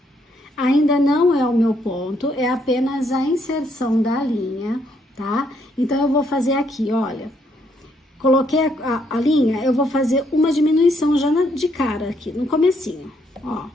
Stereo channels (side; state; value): both; normal; correlation 0.72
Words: Ainda não é o meu ponto, é apenas a inserção da linha, tá? Então, eu vou fazer aqui, olha. Coloquei a linha, eu vou fazer uma diminuição já de cara aqui, no comecinho. Ó,